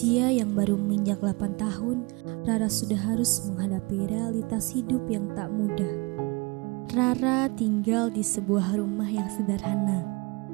yang baru menginjak 8 tahun, Rara sudah harus menghadapi realitas hidup yang tak mudah. Rara tinggal di sebuah rumah yang sederhana.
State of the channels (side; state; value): left; quieter; 27.3 dB